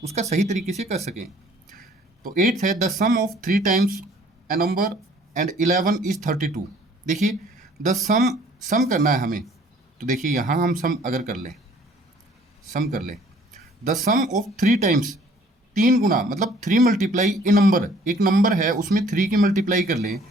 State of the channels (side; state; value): both; normal; correlation 0.57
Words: उसका सही तरीके से कर सकें। तो 8 है the sum of 3 times a number and 11 is 32। देखिए द सम करना है हमें। तो देखिए यहाँ हम सम कर लें द सम ऑफ 3 टाइम्स, 3 गुना मतलब 3 मल्टीप्लाई ए नंबर, एक नंबर है उसमें 3 की मल्टीप्लाई कर लें